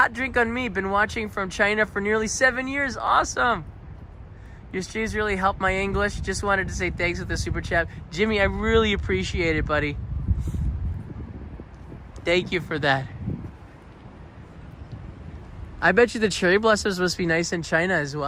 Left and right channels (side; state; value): both; identical; correlation 1.00